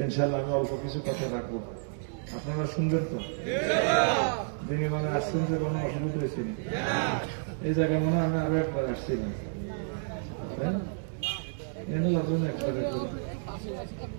ইনশাল্লাহ। আমি অল্প কিছু কথা রাখবো, আপনারা শুনবেন তো? দিনে মানে আসছেন যে কোনো অসুবিধা হয়েছে? এই জায়গায় মনে হয় আমি আরো একবার আসছিলাম,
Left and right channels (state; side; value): silent; left; digital silence